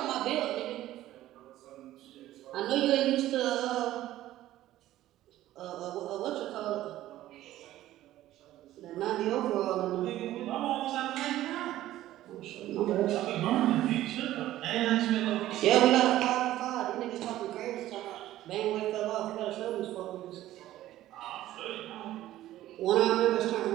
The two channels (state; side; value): quieter; left; 14.3 dB